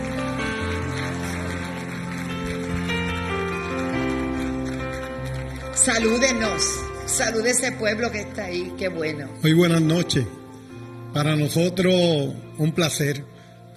Salúdenos. Salude ese pueblo que está ahí. Qué bueno. Muy buenas noches. Para nosotros un placer,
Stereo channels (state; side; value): identical; both; correlation 1.00